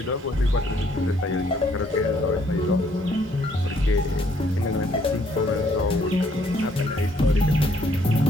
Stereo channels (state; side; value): normal; both; correlation 0.66